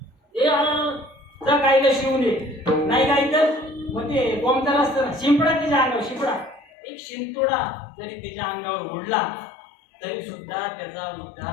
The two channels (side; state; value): right; drops out; at 6.6 s